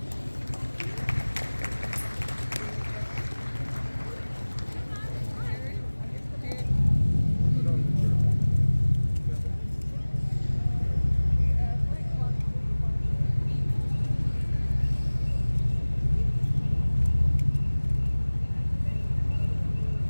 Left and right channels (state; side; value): inverted; both; correlation -1.00